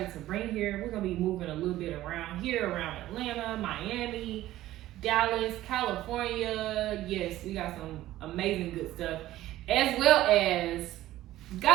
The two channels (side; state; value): left; quieter; 14.9 dB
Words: to bring here. We're going to be moving a little bit around here, around Atlanta, Miami, Dallas, California. Yes, we got some amazing good stuff. As well as,